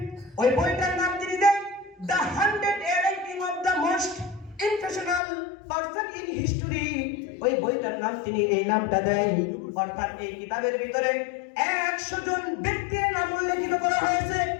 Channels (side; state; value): right; drops out; at 5.2 s